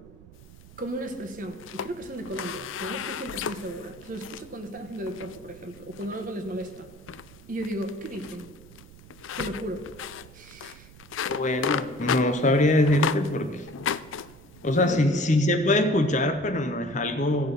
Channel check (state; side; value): noise; right; rumble, 21 dB below the sound